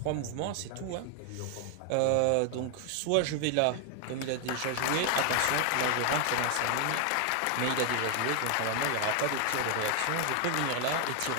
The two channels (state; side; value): different; both; correlation 0.00